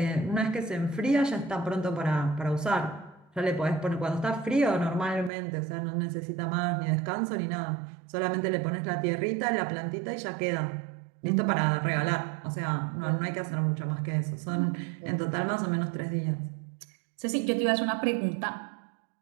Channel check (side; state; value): left; drops out; at 5.3 s